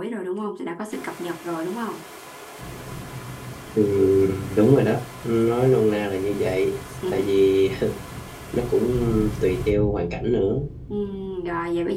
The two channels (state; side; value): identical; both; correlation 1.00